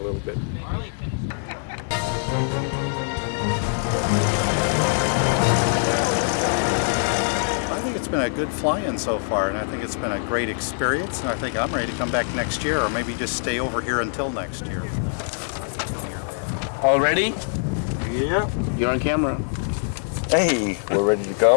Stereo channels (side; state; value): right; silent; digital silence